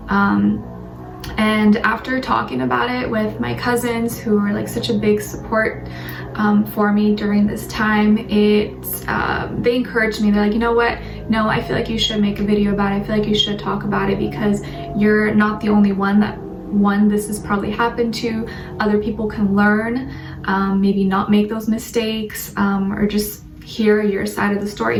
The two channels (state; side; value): identical; both; correlation 1.00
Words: And after talking about it with my cousins, who were like such a big support for me during this time, they encouraged me. They're like, you know what? No, I feel like you should make a video about it. I feel like you should talk about it because you're not the only one this has probably happened to. Other people can learn, maybe not make those mistakes, or just hear your side of the